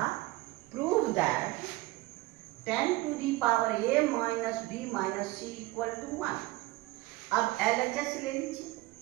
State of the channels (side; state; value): left; quieter; 20.0 dB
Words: prove that 10 to the power a minus b minus c equal to 1। अब LHS ले लीजिए,